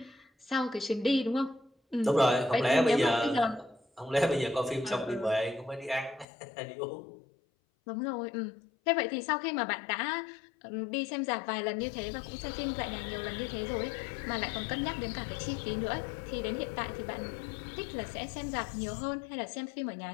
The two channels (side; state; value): right; drops out; at 6.2 s